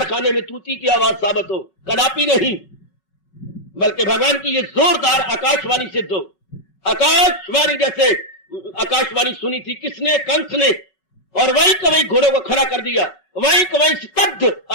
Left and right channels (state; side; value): late; right; 5.3 ms